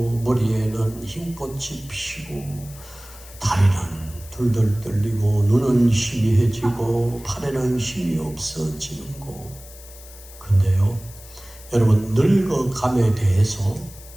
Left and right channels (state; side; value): noise; left; hiss, 19 dB below the sound